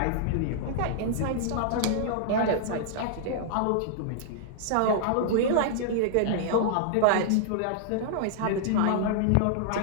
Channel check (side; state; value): both; different; correlation -0.01